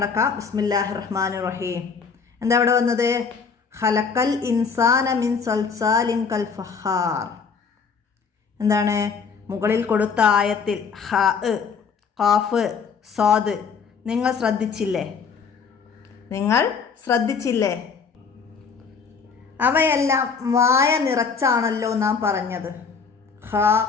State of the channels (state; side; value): quieter; right; 5.7 dB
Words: ബിസ്മില്ലാഹിർ റഹ്മാനിർ റഹീം. എന്താ ഇവിടെ വന്നത്? ഖലഖൽ ഇൻസാന മിൻ സൽസാലിൻ കൽ ഫഖാർ. എന്താണ് മുകളിൽ കൊടുത്ത ആയത്തിൽ ഹ, ഖാഫ്, സാദ് നിങ്ങൾ ശ്രദ്ധിച്ചില്ലേ? അവയെല്ലാം വായ നിറച്ചാണല്ലോ നാം പറഞ്ഞത്. ഹ,